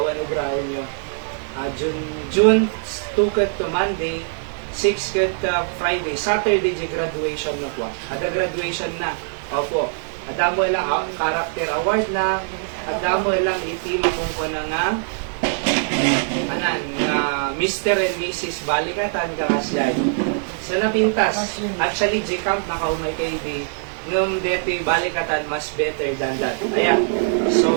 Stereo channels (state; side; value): silent; left; 64 dB below the other